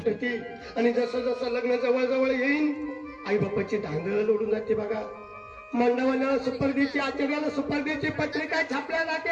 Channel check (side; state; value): both; identical; correlation 1.00